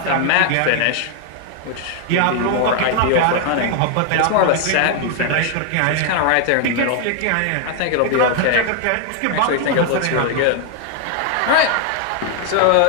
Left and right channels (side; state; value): both; different; correlation 0.00